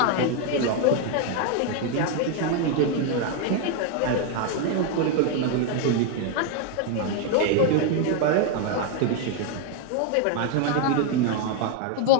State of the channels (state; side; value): different; both; correlation 0.01